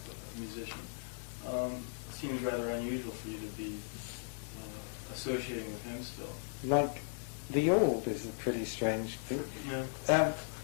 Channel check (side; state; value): right; silent; digital silence